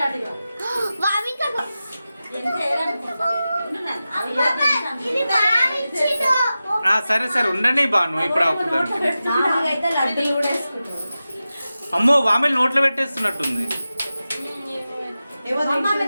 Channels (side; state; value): both; inverted; correlation -0.94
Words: సరే సరే ఉండండి బాను ఇప్పుడు అవుతుంది. అమ్మో వామిలు నోట్లో పెట్టేస్తున్నట్టుంది.